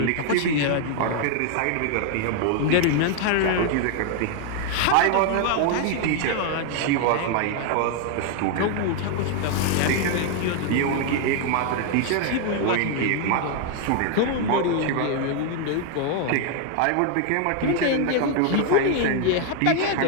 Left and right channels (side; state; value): both; different; correlation 0.00